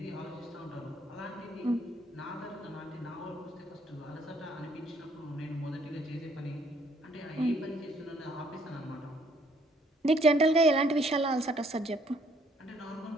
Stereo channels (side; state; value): both; normal; correlation 0.65